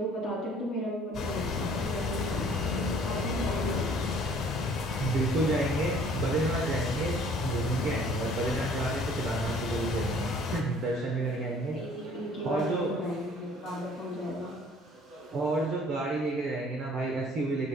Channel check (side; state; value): both; normal; correlation 0.55